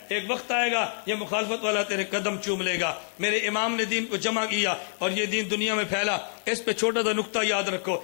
ایک وقت آئے گا یہ مخالفت والا تیرے قدم چوم لے گا۔ میرے امام نے دین کو جمع کیا اور یہ دین دنیا میں پھیلا۔ اس پہ چھوٹا سا نقطہ یاد رکھو،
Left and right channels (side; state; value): right; silent; 59 dB below the other